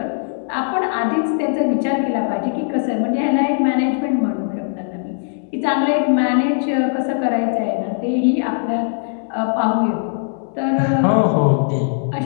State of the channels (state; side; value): silent; right; 66 dB below the other